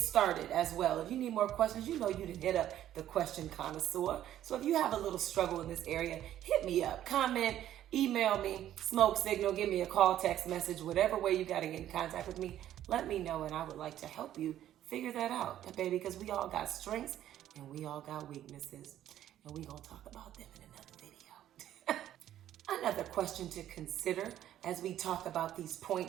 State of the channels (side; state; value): left; quieter; 11.9 dB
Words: as well. If you need more questions, you can hit up the question connoisseur. So if you have a little struggle in this area, hit me up, comment, email me, smoke signal, give me a call, text message, whatever way you got to get in contact with me, let me know, and I would like to help you figure that out, baby, because we all got strengths and we all got weaknesses, and we gonna talk about them in another video. Another question to consider as we talk about these